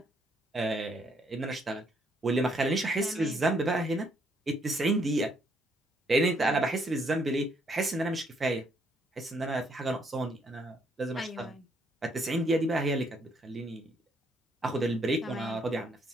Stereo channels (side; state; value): both; normal; correlation 0.71